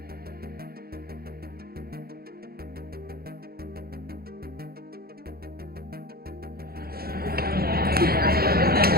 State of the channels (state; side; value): late; left; 0.44 ms